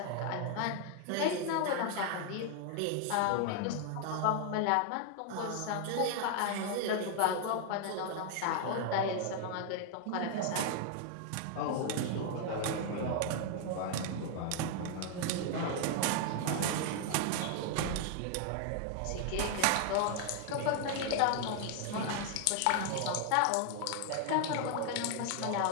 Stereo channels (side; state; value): both; different; correlation 0.00